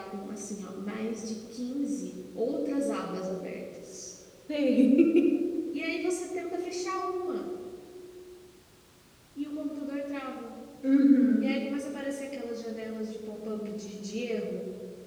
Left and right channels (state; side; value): identical; both; correlation 1.00